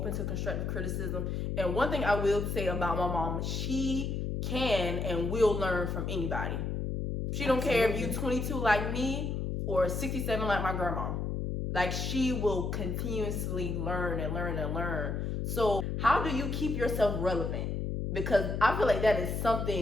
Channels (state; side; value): noise; left; hum, 2 dB below the sound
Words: to constructive criticism. And one thing I will say about my mom, she can and will learn from anybody. She don't care if you're 22 like me or 67 like my grandma. Like, she will continuously learn and learn and learn. So how do you keep yourself relevant? Because I feel like that is